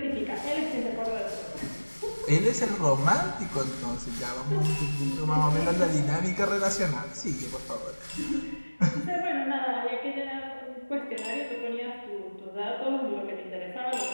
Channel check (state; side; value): inverted; both; correlation -1.00